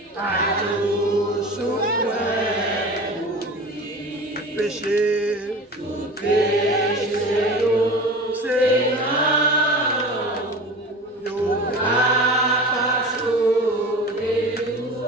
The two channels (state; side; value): normal; both; correlation 0.34